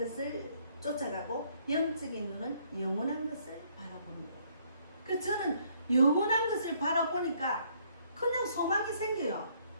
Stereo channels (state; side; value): inverted; both; correlation -0.66